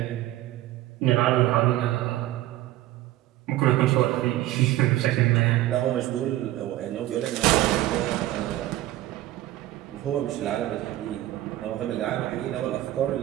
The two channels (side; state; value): left; quieter; 15.1 dB